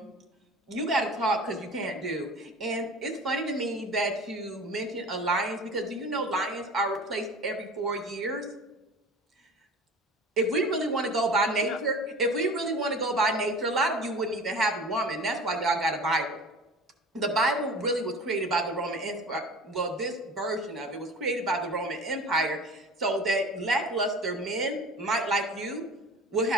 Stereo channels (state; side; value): normal; both; correlation 0.39